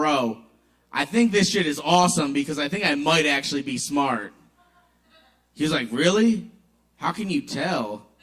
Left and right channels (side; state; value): both; identical; correlation 1.00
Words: I think this shit is awesome because I think I might actually be smart. He was like, really? How can you tell?